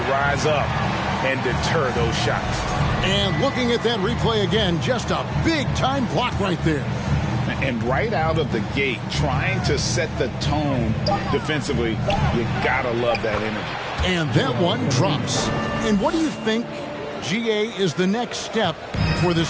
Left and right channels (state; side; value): identical; both; correlation 1.00